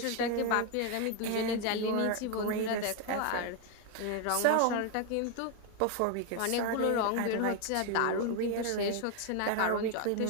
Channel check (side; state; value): both; different; correlation 0.01